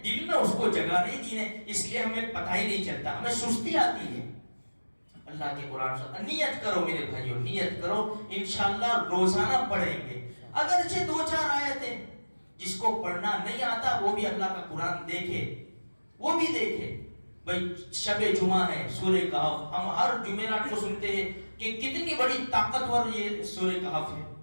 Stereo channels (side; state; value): both; inverted; correlation -1.00